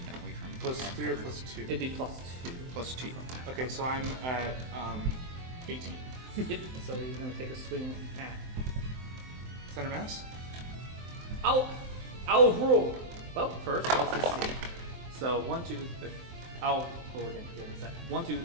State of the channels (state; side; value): late; left; 23 ms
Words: we? From Plus 3 or plus 2? It'd be +2. +2. Okay, so I'm at 18. Yep. So he's gonna take a swing at. Center mass? I'll roll. Well, first, let's just see. So, 1, 2, 3. I'll roll again. Give me a second. 1, 2,